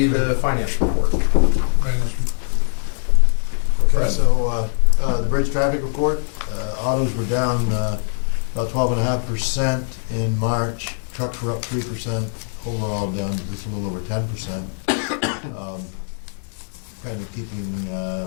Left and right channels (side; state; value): right; silent; 65 dB below the other